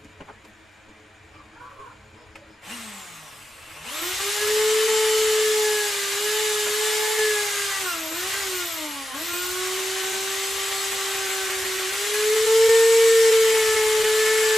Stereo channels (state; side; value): normal; both; correlation 0.91